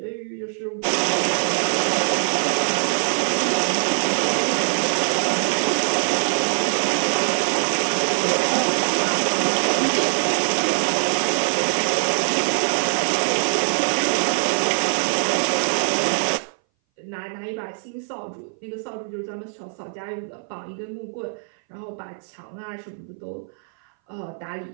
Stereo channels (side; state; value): left; silent; 60 dB below the other